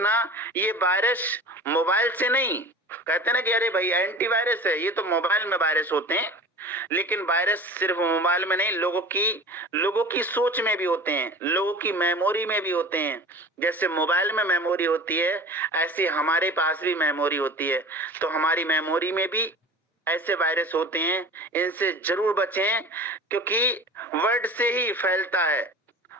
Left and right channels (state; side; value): normal; both; correlation 0.38